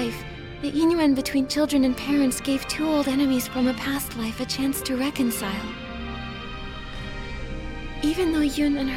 the Yingyuan between children and parents gave two old enemies from a past life a chance to reconcile. Even though Yun and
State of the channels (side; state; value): both; identical; correlation 1.00